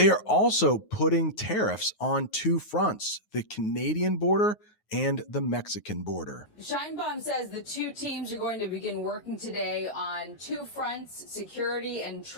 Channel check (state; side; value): late; right; 9.4 ms